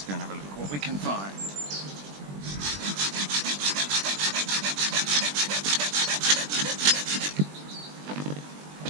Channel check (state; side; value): late; left; 20 ms